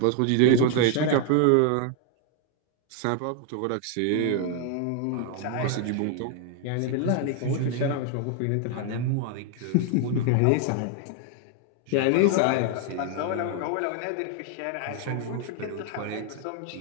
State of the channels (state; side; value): different; both; correlation 0.00